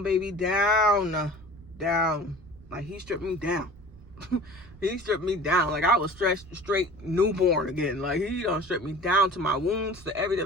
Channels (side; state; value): both; normal; correlation 0.42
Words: baby, down. Like, he stripped me down. He stripped me down. Like, I was straight newborn again. Like, he done stripped me down to my wounds, to